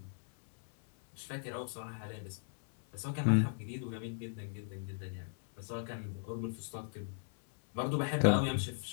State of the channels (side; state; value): right; silent; 53 dB below the other